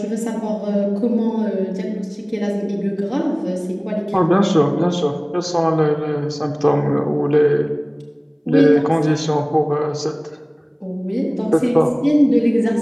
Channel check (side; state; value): both; identical; correlation 1.00